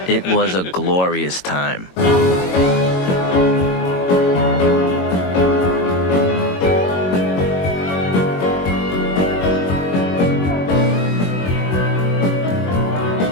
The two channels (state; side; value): late; right; 22 ms